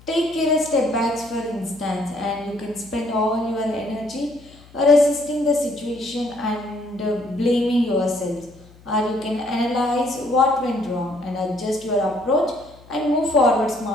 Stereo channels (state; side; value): noise; left; hum, 24 dB below the sound